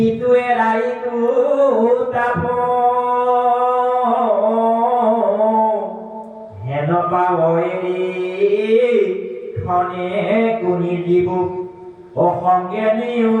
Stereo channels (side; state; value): both; identical; correlation 1.00